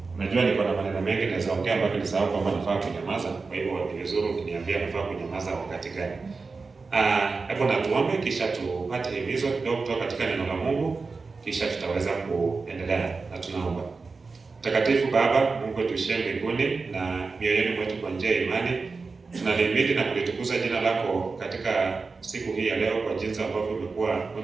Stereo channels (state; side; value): quieter; left; 4.3 dB